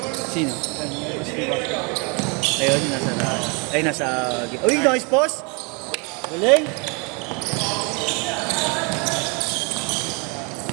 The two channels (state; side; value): quieter; left; 32.6 dB